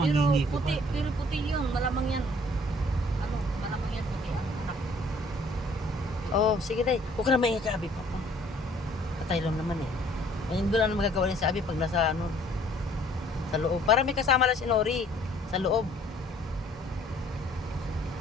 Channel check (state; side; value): normal; both; correlation 0.58